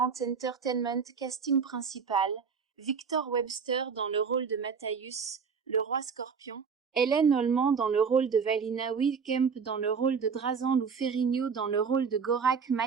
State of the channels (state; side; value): quieter; left; 6.0 dB